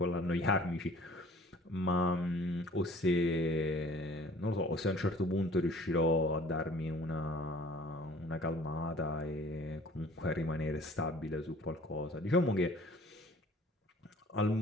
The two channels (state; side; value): normal; both; correlation 0.51